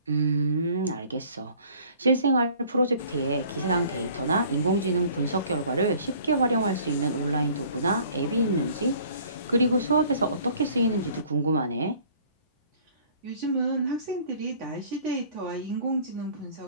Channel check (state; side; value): inverted; both; correlation -0.53